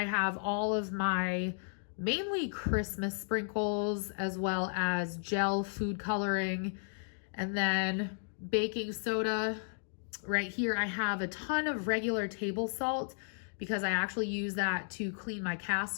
have all of my mainly Christmas sprinkles as well as gel food coloring, and then baking soda. Right here I have a ton of regular table salt because I actually use that to clean my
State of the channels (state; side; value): silent; right; digital silence